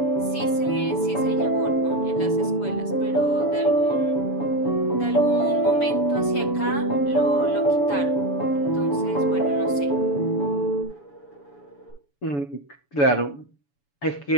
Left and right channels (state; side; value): late; right; 7.0 ms